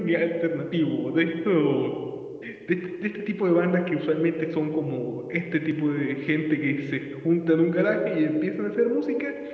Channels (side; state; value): both; identical; correlation 1.00